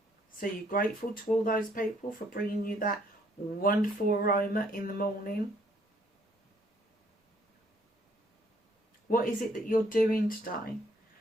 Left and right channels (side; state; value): both; normal; correlation 0.66